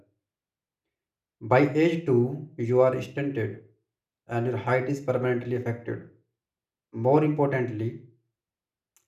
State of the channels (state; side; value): identical; both; correlation 1.00